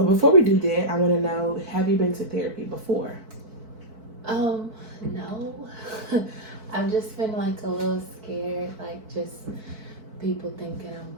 we do that, I want to know, have you been to therapy before? No. I've just been like a little scared, like just people thinking I'm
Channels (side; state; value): left; late; 4.5 ms